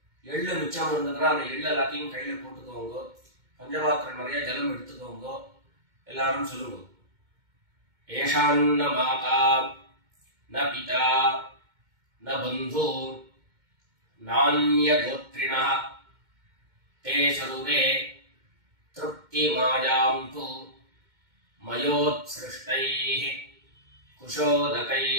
எள்ளு மிச்சம் இருந்ததுன்னா அந்த எள்ளு எல்லாத்தையும் கையில போட்டுக்கோங்க. பஞ்சபாத்திரம் நிறைய ஜலம் எடுத்துக்கோங்க. எல்லாரும் சொல்லுங்க ஏஷான்ன மாதா ந பிதா ந பந்து நான்ய கோத்ரிணः தே சர்வே திருப்தி மாயாம் து மயோத்ஸ்ருஷ்டைஹ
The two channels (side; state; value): left; late; 2.2 ms